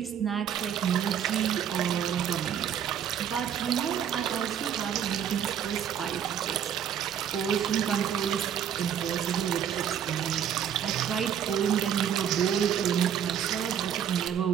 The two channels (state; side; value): quieter; left; 8.9 dB